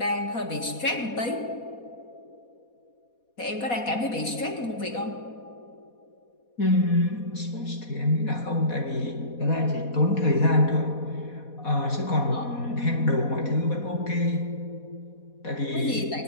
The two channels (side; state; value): right; late; 4.2 ms